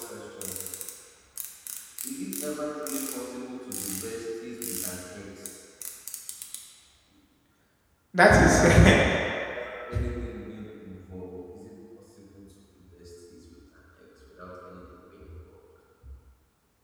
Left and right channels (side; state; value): both; identical; correlation 1.00